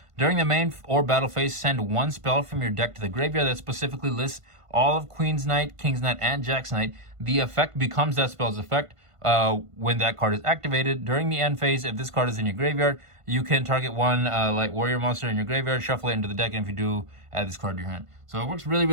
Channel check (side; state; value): left; late; 1.5 ms